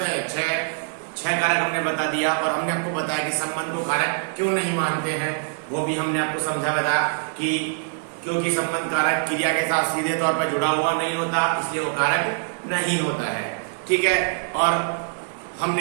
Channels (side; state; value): left; silent; digital silence